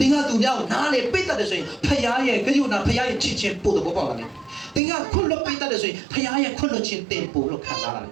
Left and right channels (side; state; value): left; drops out; at 4.8 s